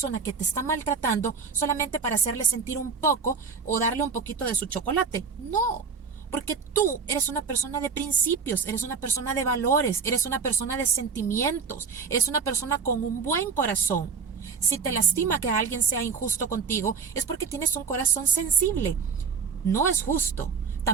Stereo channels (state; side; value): quieter; left; 5.7 dB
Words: que te está maltratando solamente para hacerle sentir un poco o darle un poquito de su chocolate. No, porque tú eres una persona de principios, eres una persona de valores, eres una persona de sentimientos, eres una persona con un buen corazón. Si te lastima que alguien sea injusto contigo, es porque tienes un corazón sensible. No es justo.